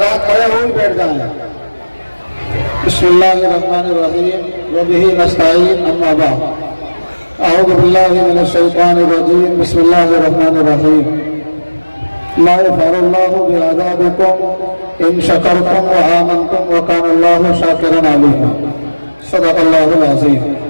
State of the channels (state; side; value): inverted; both; correlation -1.00